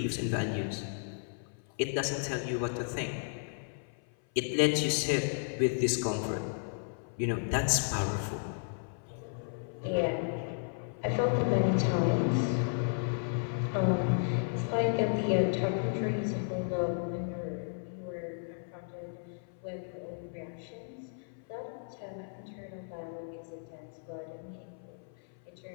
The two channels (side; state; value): right; silent; 55 dB below the other